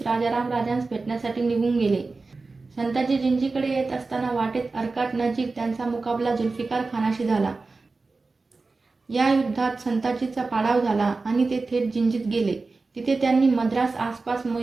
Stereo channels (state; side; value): quieter; left; 3.8 dB